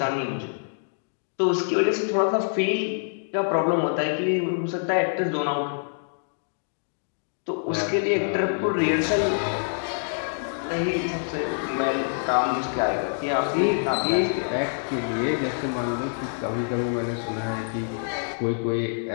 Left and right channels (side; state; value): right; silent; digital silence